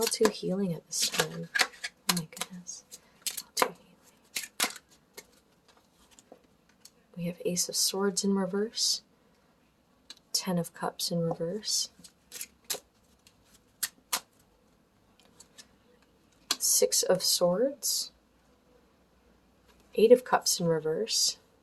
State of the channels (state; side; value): identical; both; correlation 1.00